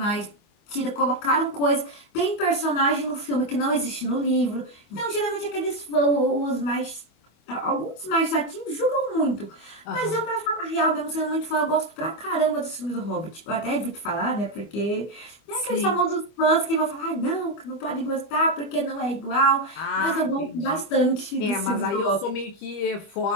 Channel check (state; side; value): late; right; 25 ms